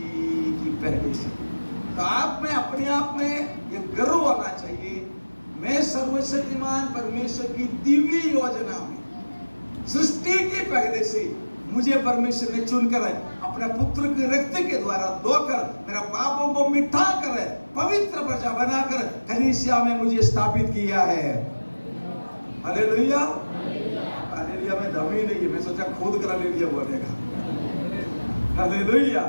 की पहले से। तो आप में अपने आप में ये गर्व आना चाहिए, मैं सर्वशक्तिमान परमेश्वर की दिव्य योजना में सृष्टि के पहले से मुझे परमेश्वर ने चुनकर अपने पुत्र के रक्त के द्वारा धोकर मेरा पापों को मिटा कर पवित्र प्रजा बनाकर कलीसिया में मुझे स्थापित किया है। Hallelujah, hallelujah. में दम ही नहीं है, मैं सोचा खुद कर हालेलुया बोलेगा। हालेलुया।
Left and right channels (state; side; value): inverted; both; correlation -1.00